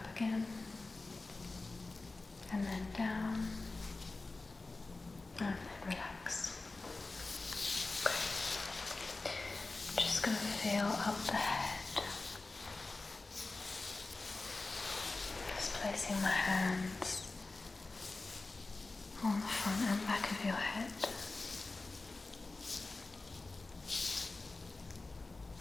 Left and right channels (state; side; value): quieter; right; 3.4 dB